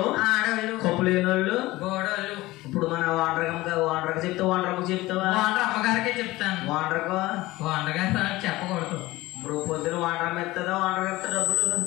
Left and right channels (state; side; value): quieter; right; 18.8 dB